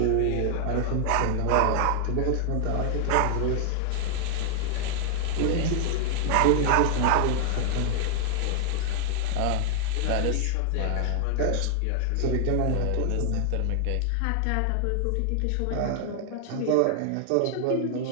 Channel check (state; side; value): different; both; correlation 0.00